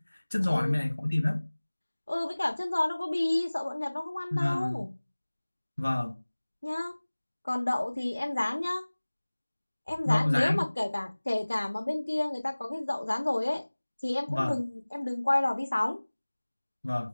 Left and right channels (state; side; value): inverted; both; correlation -1.00